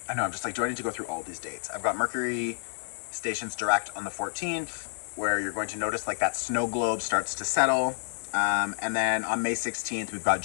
I know, I'm just like, do I need to go through all these dates? I've got Mercury stations direct on the 14th, where you're going to notice like that snow globe starts to settle. And then on May 16th, we've got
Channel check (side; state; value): right; silent; 59 dB below the other